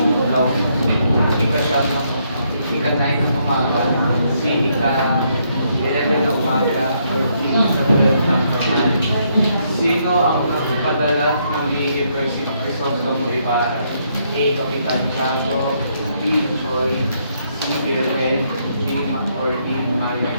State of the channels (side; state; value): both; inverted; correlation -0.74